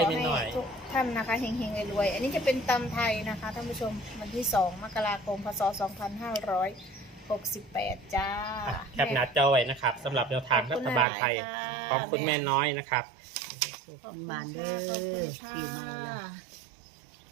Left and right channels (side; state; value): left; drops out; at 11.1 s